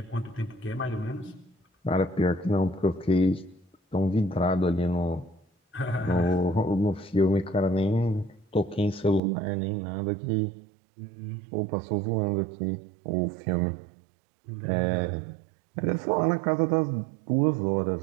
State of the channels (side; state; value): left; drops out; at 9.2 s